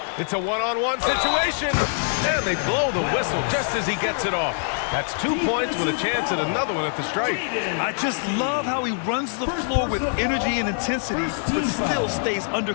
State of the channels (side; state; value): right; silent; digital silence